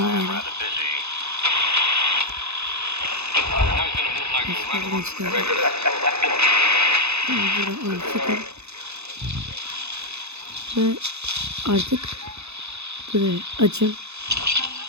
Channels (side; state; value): left; late; 0.80 ms